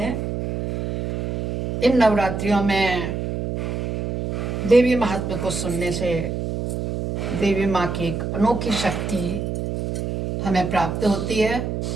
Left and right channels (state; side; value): noise; right; hum, 3 dB below the sound